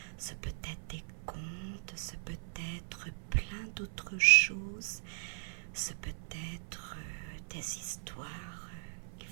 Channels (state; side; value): silent; left; 53 dB below the other